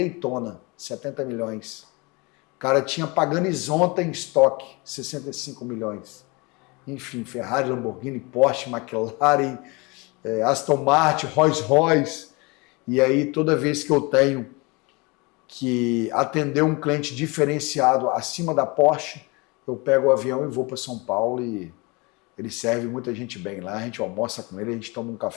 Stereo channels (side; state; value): right; quieter; 27.1 dB